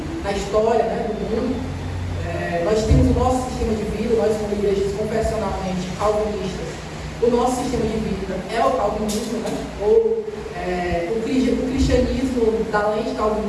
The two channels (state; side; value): identical; both; correlation 1.00